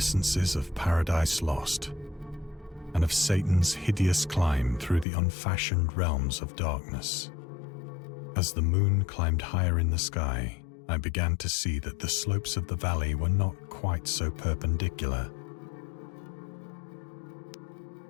of Paradise Lost, and of Satan's hideous climb through the unfashioned realms of darkness. As the moon climbed higher in the sky, I began to see that the slopes of the valley were not quite so perpendicular.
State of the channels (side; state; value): right; drops out; at 5.1 s